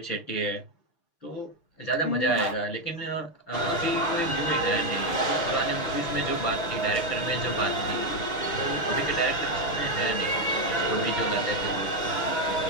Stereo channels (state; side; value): late; right; 6.5 ms